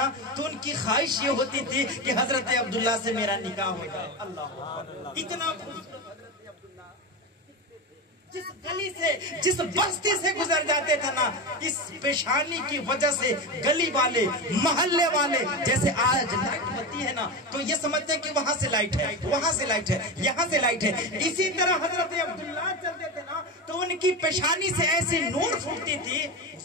تو ان کی خواہش یہ ہوتی تھی کہ حضرت عبداللہ سے میرا نکاح ہو جائے اللہ اتنا جس گلی سے جس بستی سے گزر جاتے تھے نا اس پیشانی کی وجہ سے گلی والے محلے والے جیسے آج لائٹ بتی ہے نا تو یہ سمجھتے ہیں کہ وہاں سے لائٹ ہے وہاں سے لائٹ ہے یہاں سے لائٹ ہے اسی طرح حضرت عبداللہ چلتے تھے نا تو ان کی پیشانی سے ایسی نور پھوٹتی تھی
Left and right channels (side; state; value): both; normal; correlation 0.20